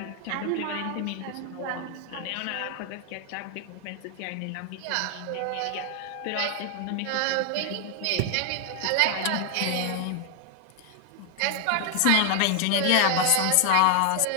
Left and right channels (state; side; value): different; both; correlation 0.00